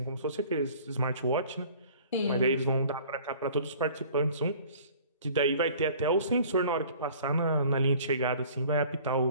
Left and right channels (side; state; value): both; inverted; correlation -0.49